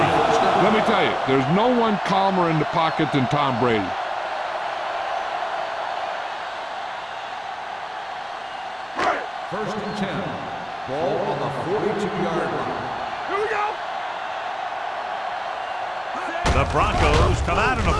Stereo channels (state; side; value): identical; both; correlation 1.00